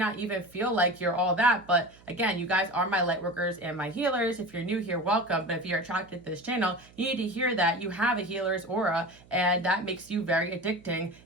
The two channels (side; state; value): right; noise; hum, 25 dB below the sound